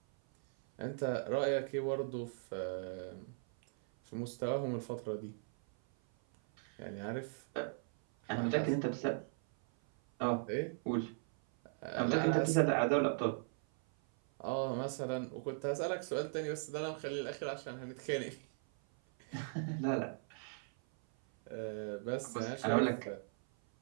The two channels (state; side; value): silent; left; 52 dB below the other